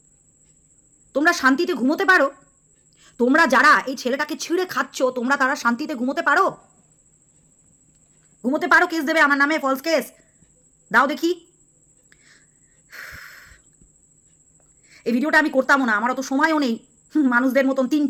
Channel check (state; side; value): identical; both; correlation 1.00